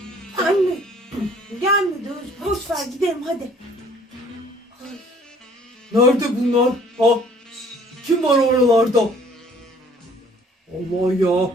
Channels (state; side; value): normal; both; correlation 0.56